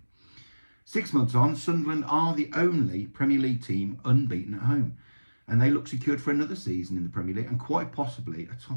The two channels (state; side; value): inverted; both; correlation -1.00